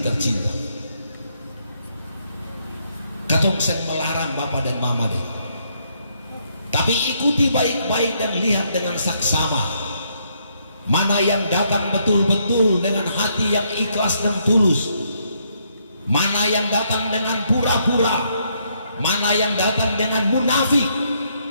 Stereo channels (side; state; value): both; inverted; correlation -0.73